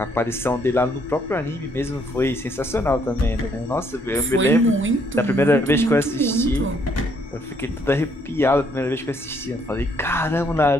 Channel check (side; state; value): both; normal; correlation 0.69